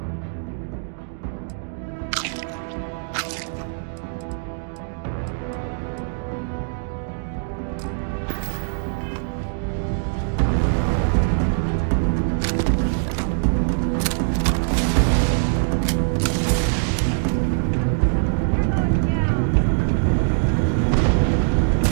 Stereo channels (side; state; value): left; silent; digital silence